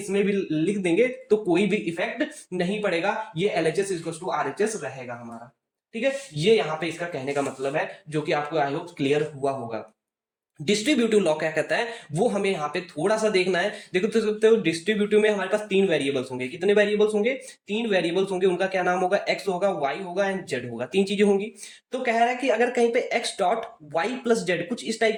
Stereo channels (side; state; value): both; identical; correlation 1.00